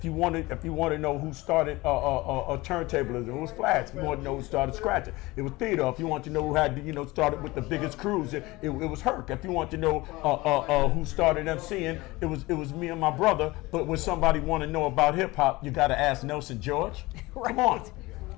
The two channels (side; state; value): right; quieter; 21.1 dB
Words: you want to know who started a turntablism, it was Flats. If you want to know who started scratching, it was Theodore. If you want to know who had started with the biggest crews, it was Herc. If you want to know who started MCing, it was me and my brother. But when somebody want to know about hip hop, you got to ask Nelson George. Right. Come on.